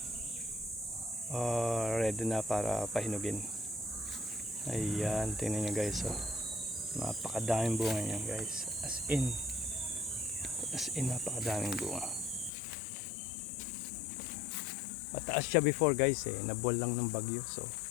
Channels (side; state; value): right; drops out; at 12.5 s